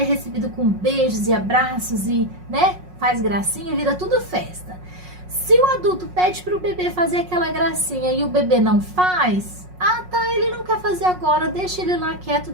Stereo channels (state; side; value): late; left; 5.5 ms